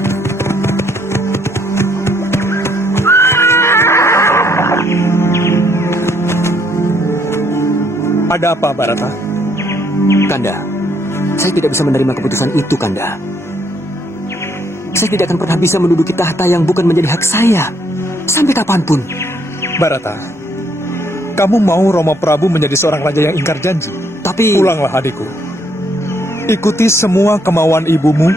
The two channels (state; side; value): normal; both; correlation 0.69